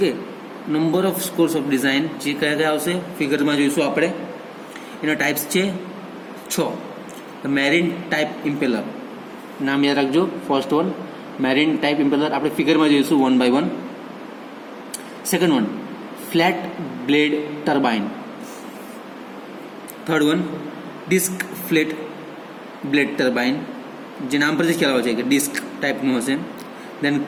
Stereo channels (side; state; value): both; identical; correlation 1.00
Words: number of scores of design જે કયા કયા આવશે ફિગરમાં જોઈશું આપણે. એના ટાઈપ્સ છે 6. મેરીન ટાઈપ ઇમ્પેલર, નામ યાદ રાખજો. First one marine type impeller આપણે ફિગરમાં જોઈશું 1 by 1. Second one flat blade turbine. Third one disc flat blade turbine, જે નામ પરથી ખ્યાલ આવે છે કે ડિસ્ક ટાઈપનું હશે. દેન